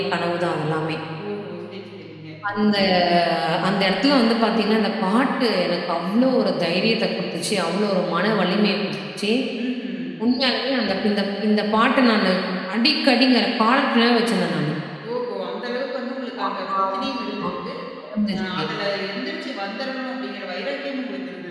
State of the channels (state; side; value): identical; both; correlation 1.00